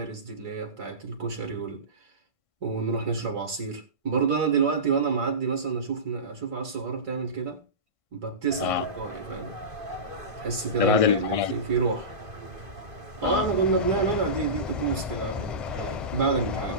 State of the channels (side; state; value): left; late; 1.5 ms